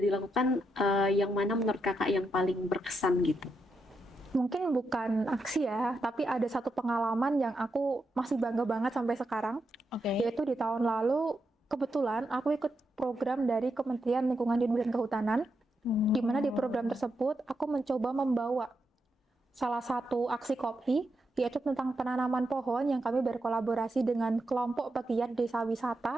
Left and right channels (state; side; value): normal; both; correlation 0.84